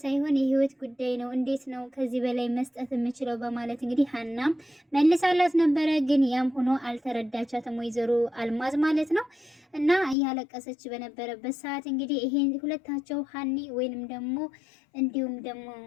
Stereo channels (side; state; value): right; drops out; at 10.2 s